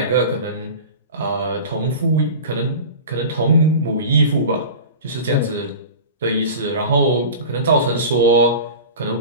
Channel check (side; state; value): both; inverted; correlation -0.34